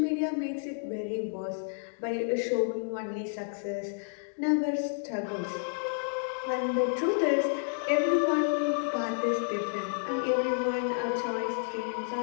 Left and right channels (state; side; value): silent; right; digital silence